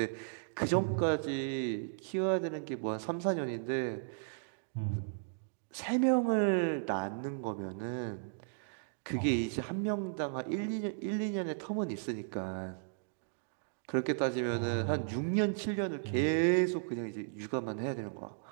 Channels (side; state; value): left; silent; digital silence